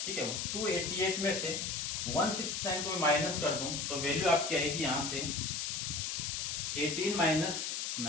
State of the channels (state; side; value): noise; left; hiss, 2 dB below the sound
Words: ठीक है, 288 में से 169 को मैं माइनस कर दूं तो वैल्यू आपकी आएगी यहां से 18 माइनस